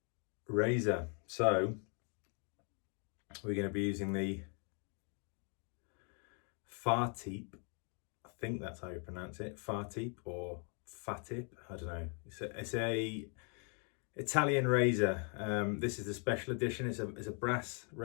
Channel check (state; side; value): quieter; right; 38.9 dB